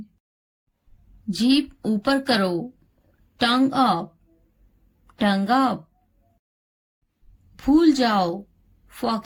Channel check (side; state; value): both; identical; correlation 1.00